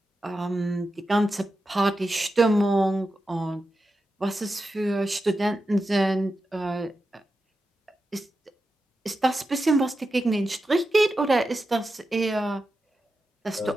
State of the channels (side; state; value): both; normal; correlation 0.90